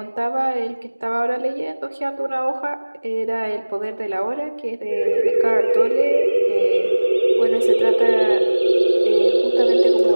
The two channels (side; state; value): both; inverted; correlation -1.00